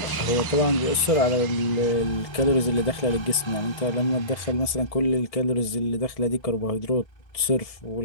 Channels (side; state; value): right; late; 1.7 ms